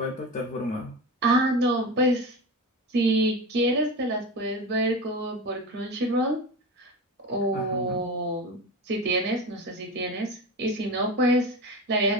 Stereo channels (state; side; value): normal; both; correlation 0.26